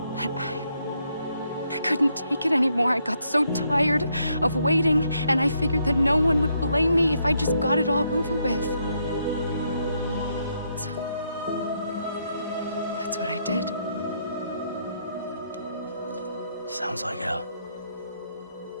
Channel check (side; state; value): both; inverted; correlation -0.75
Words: But I couldn't take it anymore. I got so tired of waiting, and I figured that no one would blame me if I just got it all over with. So, that's what I did. Sounds like hell.